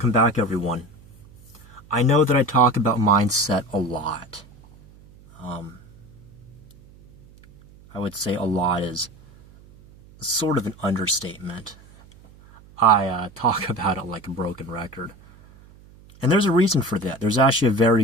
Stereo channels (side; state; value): right; noise; hum, 24 dB below the sound